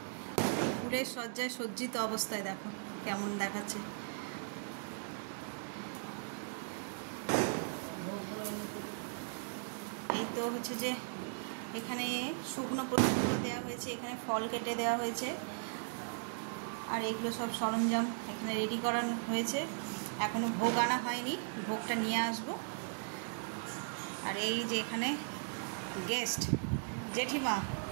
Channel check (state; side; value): silent; left; digital silence